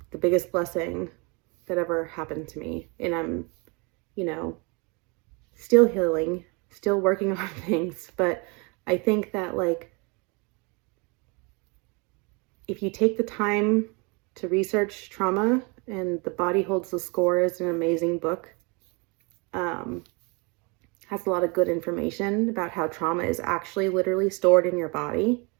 biggest blessing that ever happened to me. And I'm, you know, still healing, still working on things. But I think that, like, if you take the time to research trauma, and The Body Holds the Score is an amazing book, has a lot of good information about how trauma is actually literally stored in your body.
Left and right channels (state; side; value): quieter; left; 30.4 dB